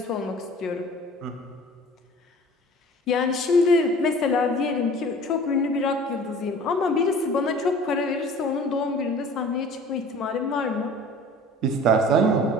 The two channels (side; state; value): both; normal; correlation 0.46